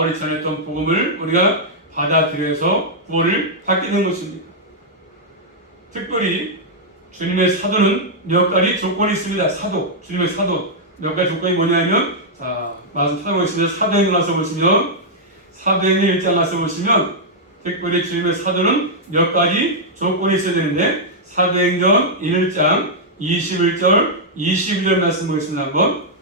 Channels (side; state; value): both; normal; correlation -0.06